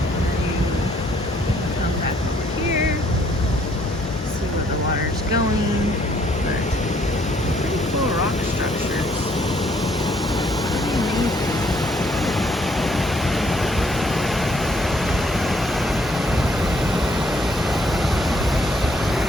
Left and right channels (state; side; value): normal; both; correlation 0.66